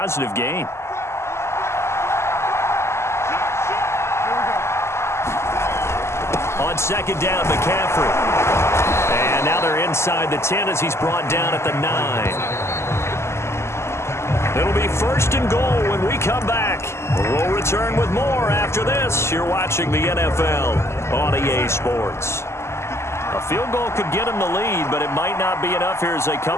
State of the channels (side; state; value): right; late; 0.13 ms